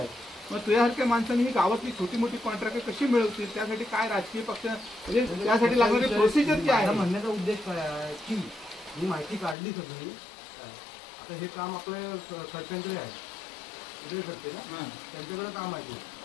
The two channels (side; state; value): right; drops out; at 9.6 s